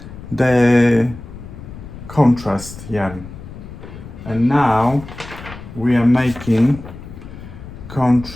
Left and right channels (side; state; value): left; noise; rumble, 14 dB below the sound